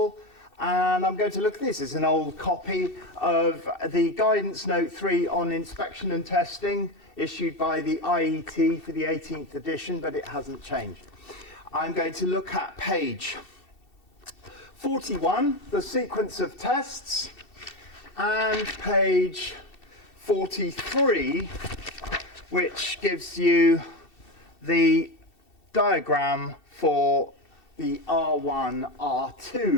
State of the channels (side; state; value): right; late; 2.7 ms